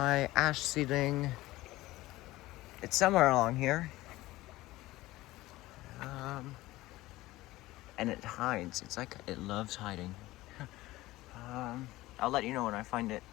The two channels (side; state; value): right; quieter; 17.9 dB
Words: ash seedling. It's somewhere along here. And it hides. It's like it loves hiding. I'll let you know when I find it.